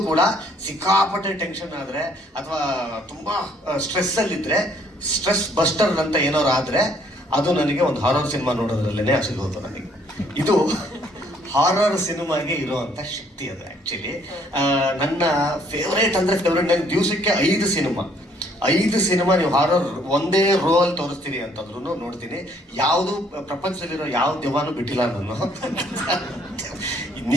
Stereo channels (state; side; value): normal; both; correlation 0.64